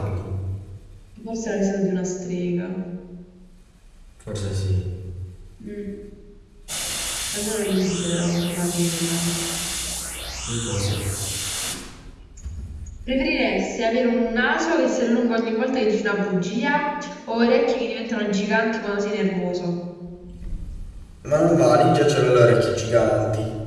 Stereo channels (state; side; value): identical; both; correlation 1.00